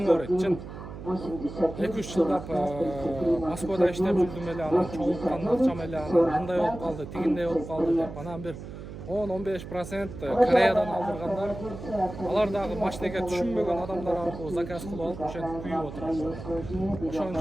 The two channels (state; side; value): noise; right; hum, 11 dB below the sound